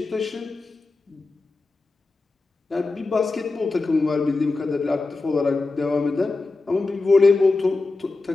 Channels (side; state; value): right; quieter; 3.5 dB